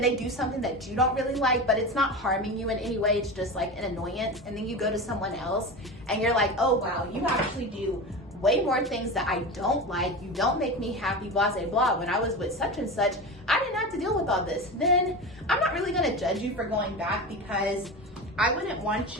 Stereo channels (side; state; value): both; normal; correlation 0.26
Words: they do something that you don't really like, but it's not harming you in any way, it's just like an annoyance, and then you go to someone else and you're like, oh wow, you actually do way more things that I don't like, you don't make me happy, blah, blah, blah. When I was with such and such, I didn't have to deal with all this. Then I'm not really gonna judge you for going back, because I wouldn't want